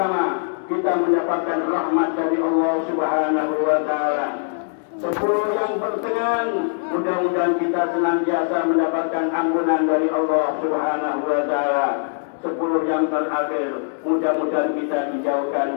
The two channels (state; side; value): silent; right; digital silence